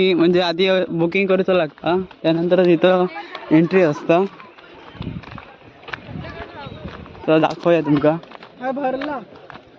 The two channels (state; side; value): identical; both; correlation 1.00